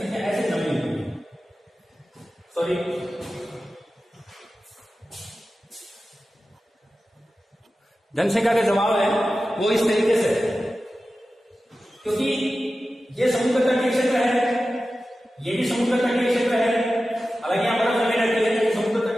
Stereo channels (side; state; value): both; normal; correlation 0.94